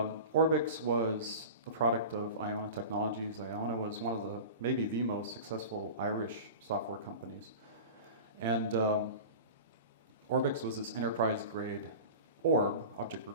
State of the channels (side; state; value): both; inverted; correlation -0.33